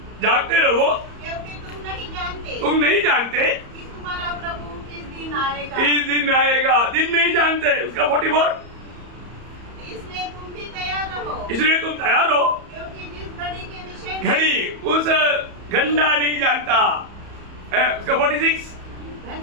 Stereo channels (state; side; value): late; left; 34 ms